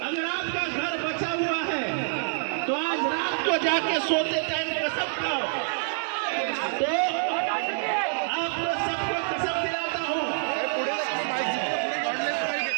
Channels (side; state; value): left; silent; digital silence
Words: अगर आपका घर बचा हुआ है तो आज रात को जाके सोते टाइम कसम खाओ। तो आपको सबको कसम दिलाता हूँ,